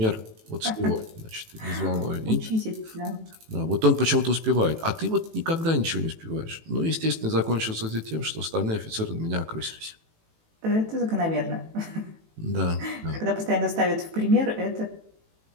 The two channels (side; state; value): left; late; 18 ms